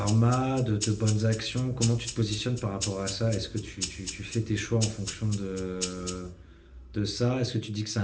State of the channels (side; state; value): both; identical; correlation 1.00